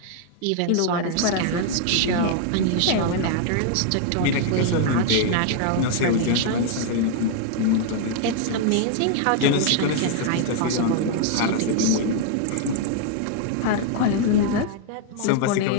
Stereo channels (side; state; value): both; different; correlation 0.00